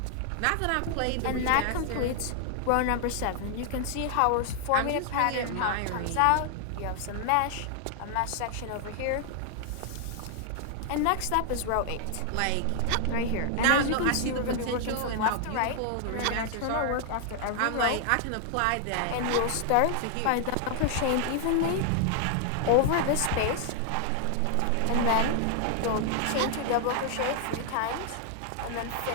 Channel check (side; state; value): both; different; correlation 0.00